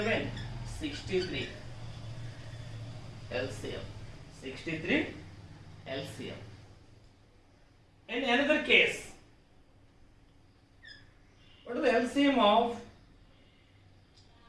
63. LCM 63 LCM. In another case, what is the LCM of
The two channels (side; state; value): both; identical; correlation 1.00